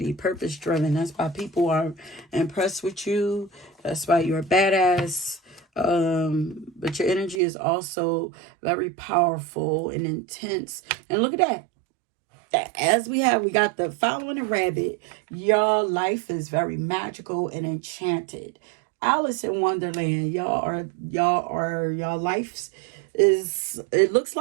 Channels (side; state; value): left; drops out; at 7.4 s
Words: purpose driven. That's why people are impressed with you. That's why you're a badass. But your energy is also very powerful and intense. And look at that. As we got the following a rabbit. Your life is very magical and enchanted. Alice in Wonderland. Y'all lives it looks